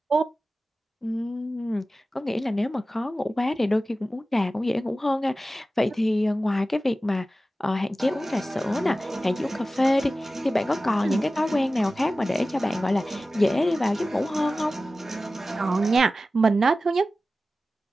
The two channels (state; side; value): normal; both; correlation 0.95